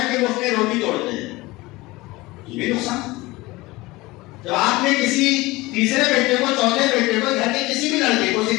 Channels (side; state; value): right; quieter; 20.9 dB